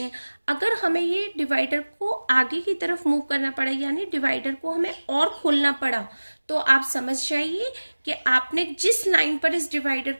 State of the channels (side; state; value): both; inverted; correlation -1.00